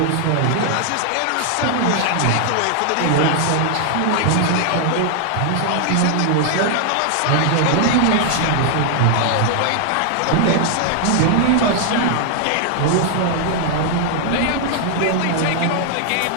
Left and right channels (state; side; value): different; both; correlation 0.00